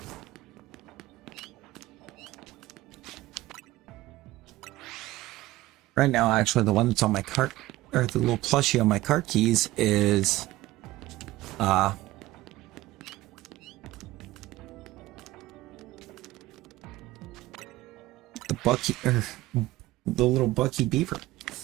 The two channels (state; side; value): quieter; left; 17.1 dB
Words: Right now, actually, the one that's on my cart, or the little plushie on my cart keys is, the Bucky, or the little Bucky Beaver.